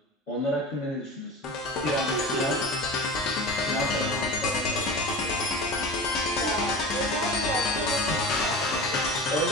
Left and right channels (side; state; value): both; normal; correlation 0.32